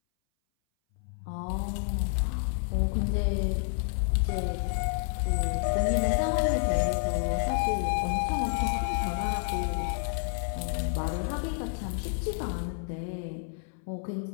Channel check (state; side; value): silent; right; 58 dB below the other